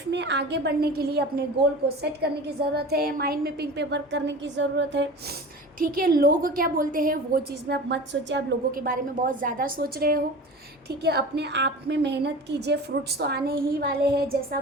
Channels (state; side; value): normal; both; correlation 0.35